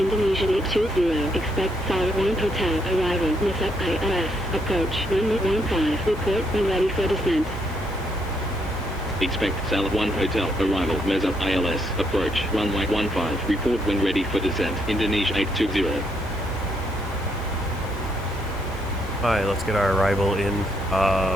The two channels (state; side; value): normal; both; correlation 0.74